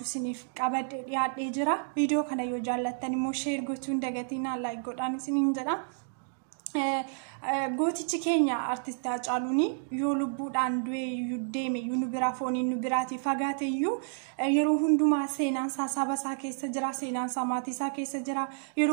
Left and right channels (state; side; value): silent; left; digital silence